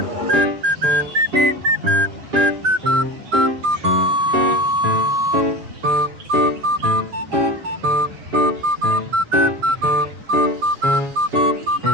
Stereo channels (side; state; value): left; late; 7.4 ms